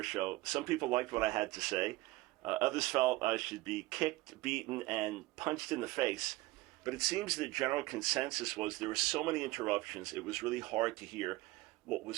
Show, some people liked what I had to say. Others felt I should be kicked, beaten, and punched in the face. But it seems the general consensus was there were so many interruptions, it was really hard to hear what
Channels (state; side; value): quieter; left; 19.7 dB